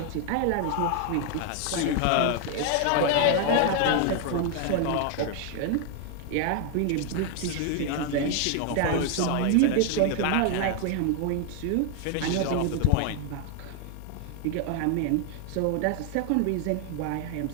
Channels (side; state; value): both; different; correlation 0.00